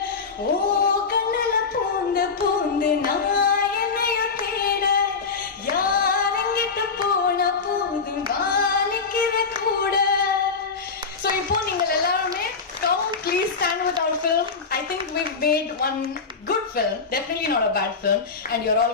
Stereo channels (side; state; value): right; quieter; 5.0 dB